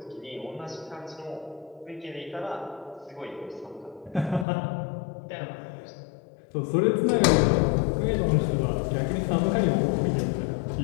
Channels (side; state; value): right; drops out; at 4.5 s